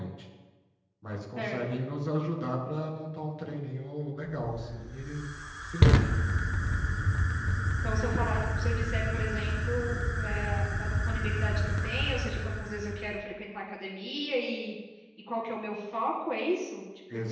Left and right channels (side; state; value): both; identical; correlation 1.00